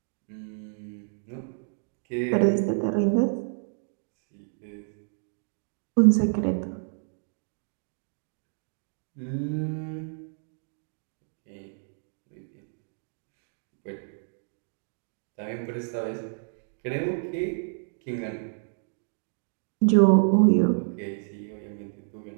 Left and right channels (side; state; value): left; silent; digital silence